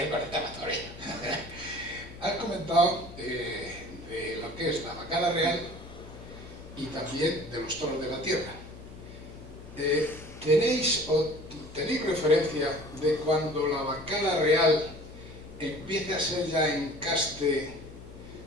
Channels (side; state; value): left; noise; hum, 16 dB below the sound